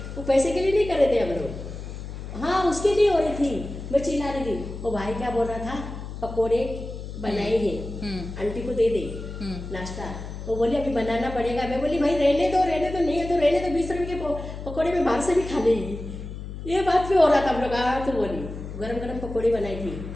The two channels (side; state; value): left; noise; hum, 9 dB below the sound